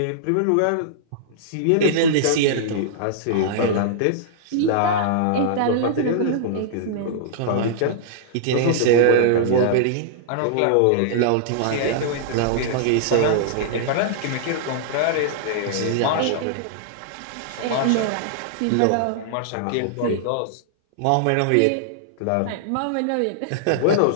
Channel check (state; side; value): different; both; correlation -0.02